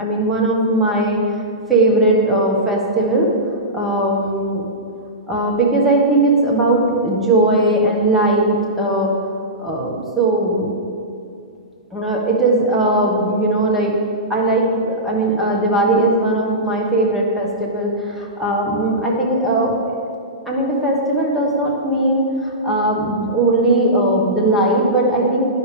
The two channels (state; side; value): normal; both; correlation -0.16